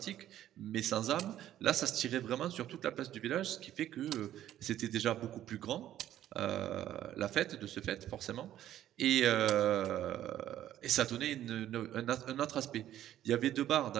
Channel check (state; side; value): quieter; left; 12.2 dB